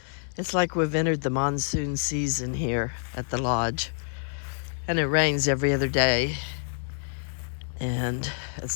It's like we've entered the monsoon season here at the lodge. And it rains every other day. And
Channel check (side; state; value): right; silent; digital silence